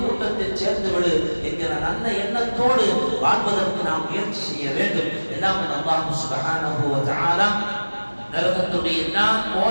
கூட்டத்தில் சேர்த்து விடு என்கிற நல்ல எண்ணத்தோடு வாழ்வதற்கு நாம் முயற்சி செய்ய வேண்டும். எல்லாம் அல்லாஹ் சுப்ஹானஹு வ தஆலா நரகத்துடைய எல்லா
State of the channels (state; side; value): inverted; both; correlation -1.00